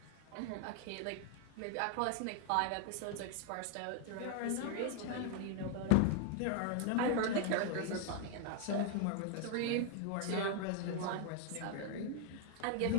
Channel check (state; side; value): different; both; correlation 0.00